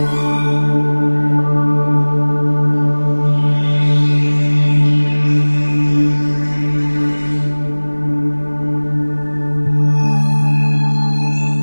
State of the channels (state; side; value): inverted; both; correlation -1.00